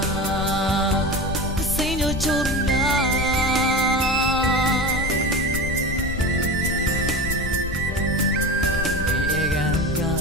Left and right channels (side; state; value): left; noise; rumble, 6 dB below the sound